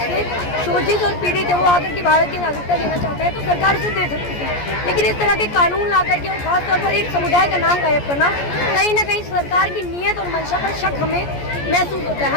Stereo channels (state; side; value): late; right; 14 ms